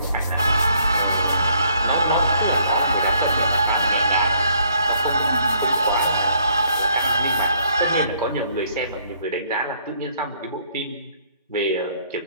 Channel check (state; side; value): inverted; both; correlation -0.66